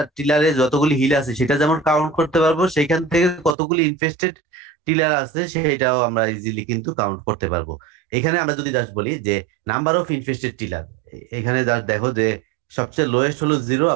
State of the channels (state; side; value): drops out; left; at 3.6 s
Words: টিলারে যতগুলি হিল আছে সেটা যেমন কাউন্ট করতে পারবো, সেখান থেকে কতগুলি ইনফেস্টেড টিলার আছে সেটাও আমরা ইজিলি কিন্তু কাউন্ট করতে পারবো। এখানে আমরা যদি জাস্ট বলি যে নাম্বার অফ ইনফেস্টেড টিলার, এখানে জাস্ট দেখো যে সবচেয়ে লোয়েস্ট হলো 0